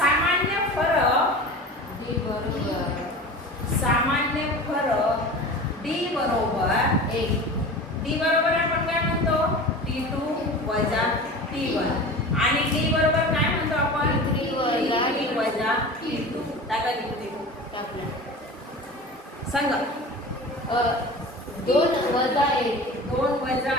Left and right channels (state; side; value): normal; both; correlation 0.35